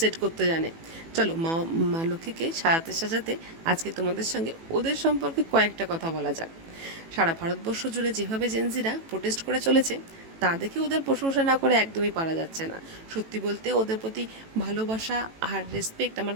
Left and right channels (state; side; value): late; left; 18 ms